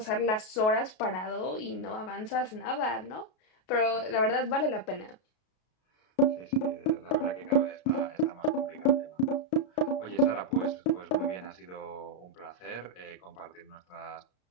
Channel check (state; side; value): late; right; 33 ms